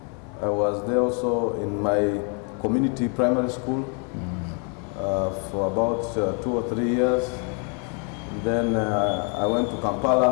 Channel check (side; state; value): right; quieter; 38.8 dB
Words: I was there also in my community primary school for about 2 or 3 years. Then I went to